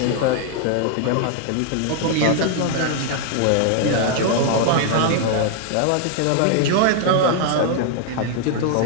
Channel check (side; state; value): both; different; correlation 0.00